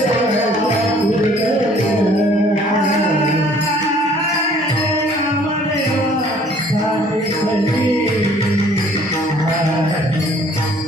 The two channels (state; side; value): normal; both; correlation 0.57